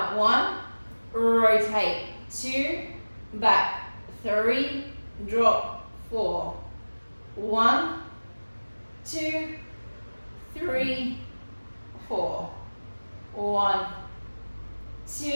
1. Rotate 2. Back 3. Drop 4. 1, 2, 3, 4. 1,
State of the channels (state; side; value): inverted; both; correlation -1.00